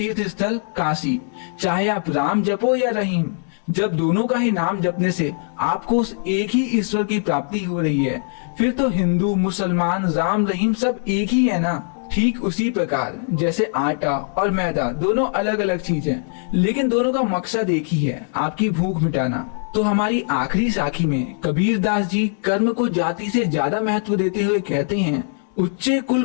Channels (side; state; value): right; silent; 63 dB below the other